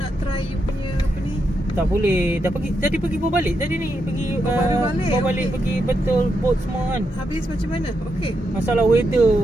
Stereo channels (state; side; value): normal; both; correlation 0.83